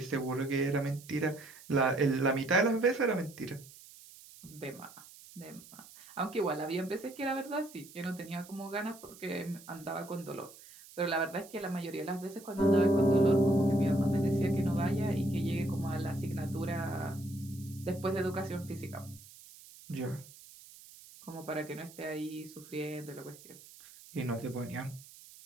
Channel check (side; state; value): right; noise; hiss, 20 dB below the sound